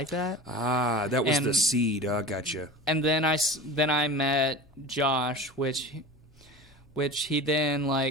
that? Ah, that was the seed. I gotcha. And then I met Josh, which he then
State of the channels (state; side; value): normal; both; correlation 0.33